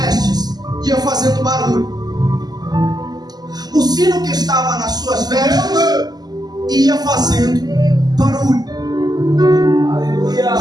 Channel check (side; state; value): left; late; 0.20 ms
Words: ia fazendo barulho. O sino que estava nas suas vestes ia fazendo barulho. Aleluia.